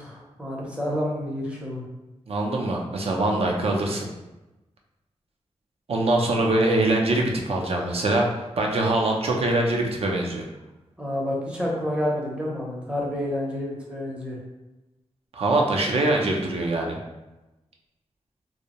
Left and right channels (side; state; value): both; normal; correlation 0.65